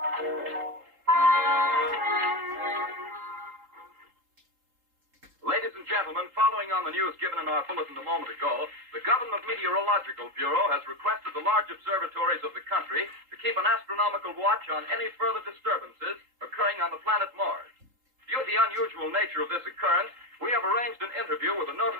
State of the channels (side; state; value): left; late; 3.8 ms